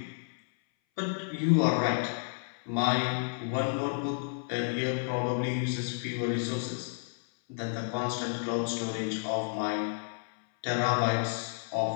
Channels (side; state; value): right; silent; 57 dB below the other